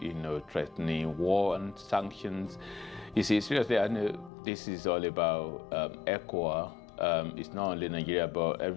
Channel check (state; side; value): drops out; right; at 4.3 s